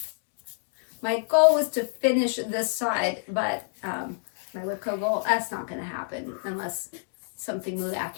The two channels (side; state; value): right; silent; 60 dB below the other